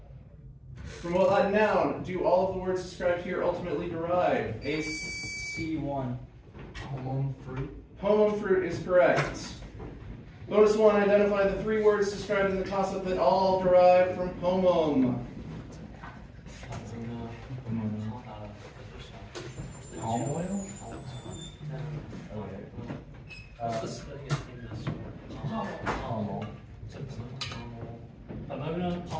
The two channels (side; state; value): both; identical; correlation 1.00